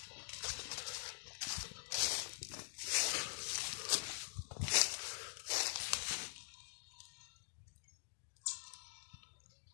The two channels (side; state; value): right; silent; digital silence